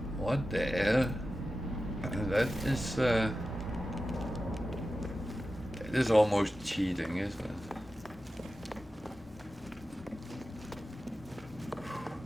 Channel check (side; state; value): both; normal; correlation 0.93